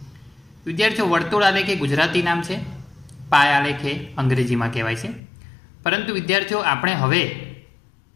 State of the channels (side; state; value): right; drops out; at 5.2 s